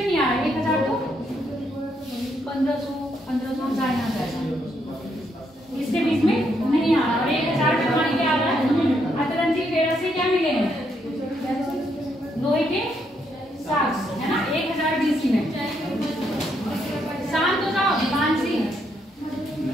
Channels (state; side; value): normal; both; correlation 0.76